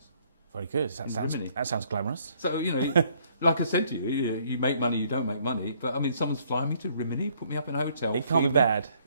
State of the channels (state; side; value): inverted; both; correlation -0.65